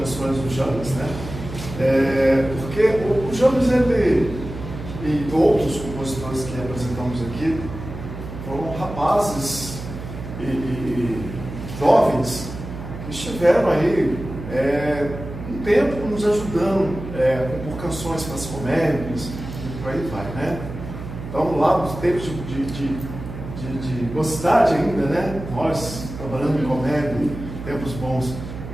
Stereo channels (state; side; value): noise; right; hum, 10 dB below the sound